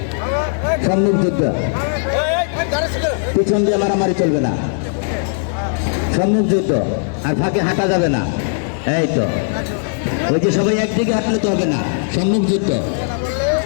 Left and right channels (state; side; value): silent; right; digital silence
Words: সম্মুখ যুদ্ধ, পিছন দিয়ে মারামারি চলবে না, সম্মুখ যুদ্ধ। আর ফাঁকে হাঁটা যাবে না। এই তো, ওই যে সবাই একদিকে হাঁটলে তো হবে না, সম্মুখ যুদ্ধ।